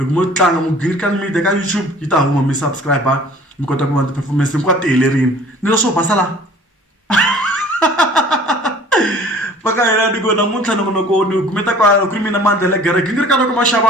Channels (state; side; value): normal; both; correlation 0.49